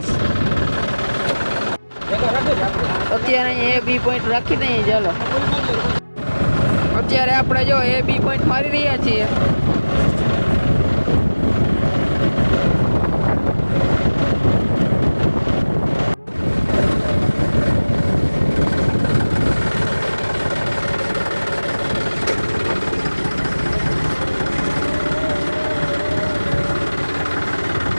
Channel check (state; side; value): inverted; both; correlation -1.00